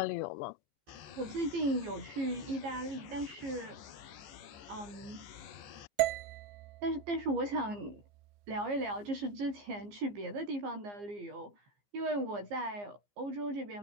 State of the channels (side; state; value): left; late; 15 ms